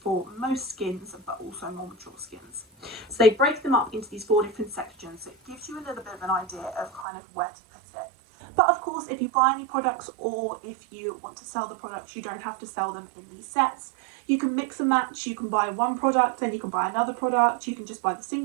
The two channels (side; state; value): left; drops out; at 7.1 s